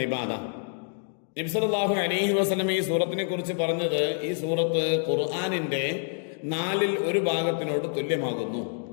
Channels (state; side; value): silent; right; 60 dB below the other